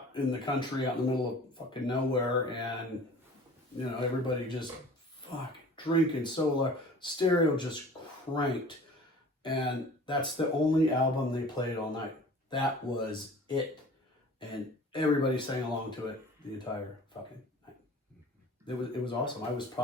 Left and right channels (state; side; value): normal; both; correlation 0.45